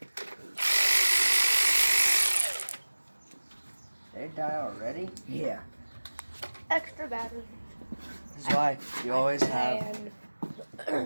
They die already? Yeah. Extra battery. This is why you always have.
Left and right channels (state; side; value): inverted; both; correlation -1.00